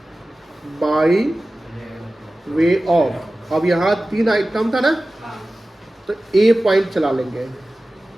by way of. अब यहाँ 3 आइटम था ना, तो ए पॉइंट चला लेंगे।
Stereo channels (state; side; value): normal; both; correlation 0.96